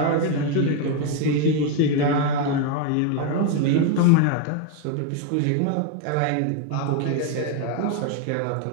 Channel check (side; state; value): both; different; correlation 0.01